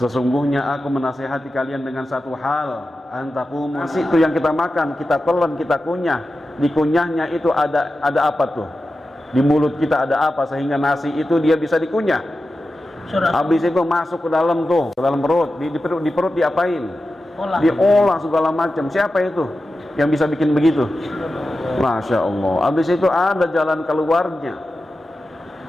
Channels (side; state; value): both; normal; correlation 0.92